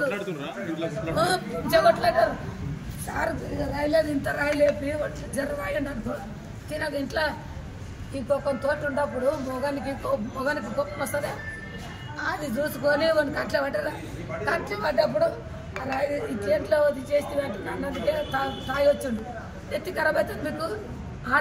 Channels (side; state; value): both; identical; correlation 1.00